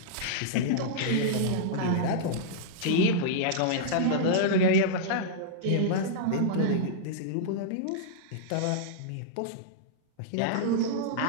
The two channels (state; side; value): different; both; correlation -0.02